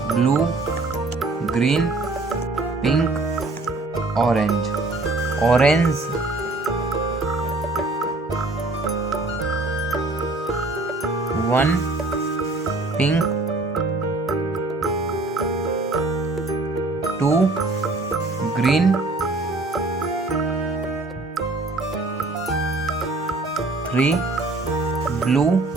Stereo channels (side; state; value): left; quieter; 3.1 dB